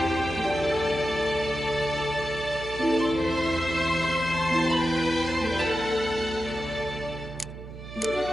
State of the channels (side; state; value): right; noise; hum, 12 dB below the sound